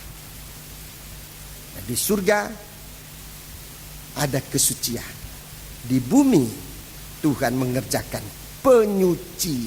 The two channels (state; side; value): identical; both; correlation 1.00